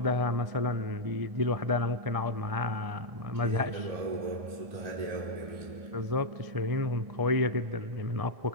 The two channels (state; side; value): late; left; 1.7 ms